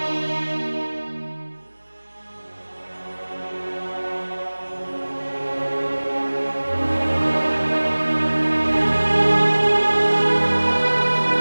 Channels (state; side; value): inverted; both; correlation -1.00